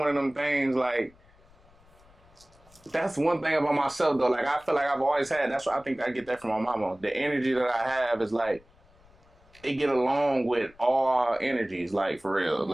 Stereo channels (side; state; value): left; noise; rumble, 28 dB below the sound